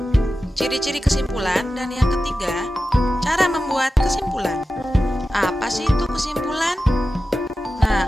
ciri-ciri kesimpulan, dan yang ketiga, cara membuat kesimpulan. Apa sih itu kesimpulan?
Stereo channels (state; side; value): normal; both; correlation 0.93